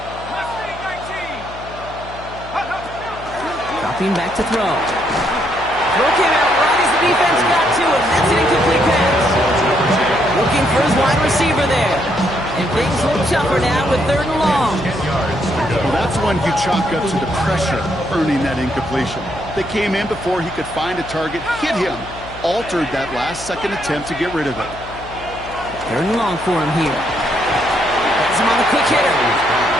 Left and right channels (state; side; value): noise; left; hum, 15 dB below the sound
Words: Dropping back to throw. Throw came out right as the defense got to him. That's an incomplete pass. Looking for his wide receiver there. And things look tougher now with 3rd and long. Well, that's one you chalk up to the pressure earning that incompletion. They came in before he could find a target, hit him, altered that last second attempt to get rid of it. 3rd and long for him here. Has him on the quick hitter.